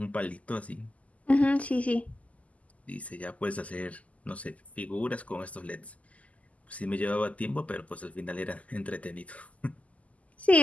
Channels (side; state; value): right; late; 0.070 ms